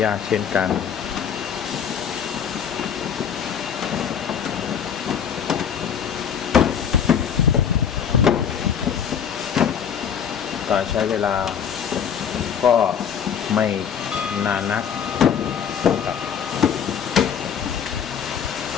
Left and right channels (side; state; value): right; quieter; 7.8 dB